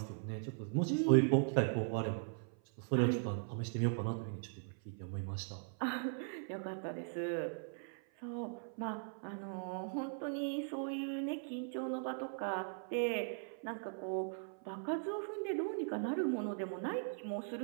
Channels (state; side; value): silent; left; 51 dB below the other